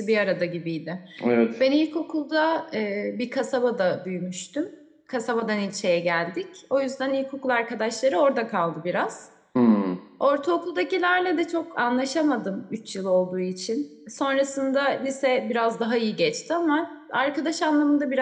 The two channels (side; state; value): both; identical; correlation 1.00